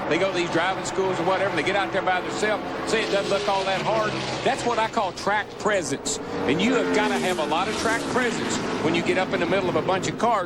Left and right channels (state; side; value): identical; both; correlation 1.00